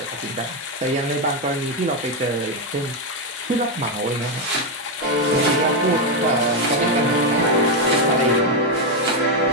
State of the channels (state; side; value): normal; both; correlation 0.05